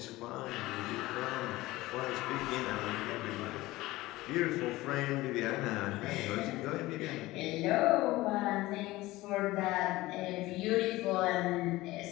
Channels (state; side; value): quieter; right; 18.6 dB